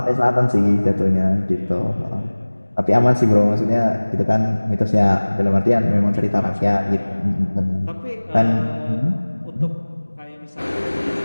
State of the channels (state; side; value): inverted; both; correlation -1.00